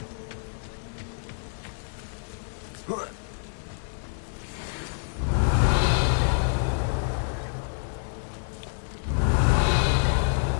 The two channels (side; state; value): right; silent; 56 dB below the other